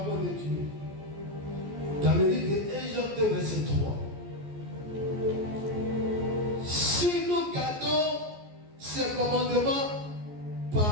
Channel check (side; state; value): left; late; 14 ms